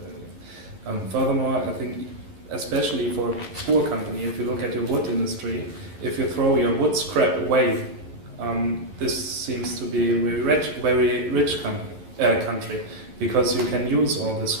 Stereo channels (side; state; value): left; late; 11 ms